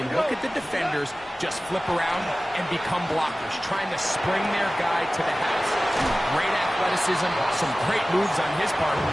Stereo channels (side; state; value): both; normal; correlation 0.97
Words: look at the defenders just flip around and become blockers, trying to spring their guy to the house. Great athleticism, some great moves on his part.